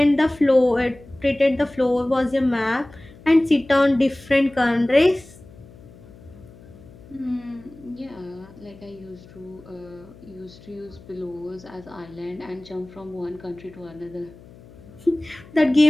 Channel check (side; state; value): left; noise; hum, 21 dB below the sound